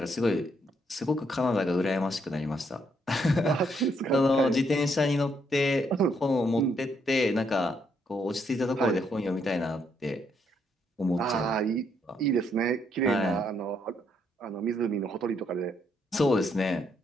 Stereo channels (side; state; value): both; normal; correlation 0.74